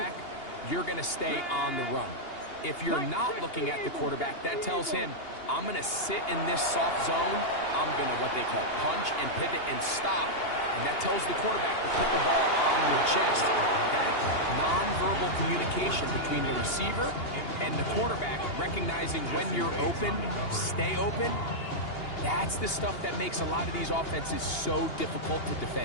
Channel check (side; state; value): right; late; 2.8 ms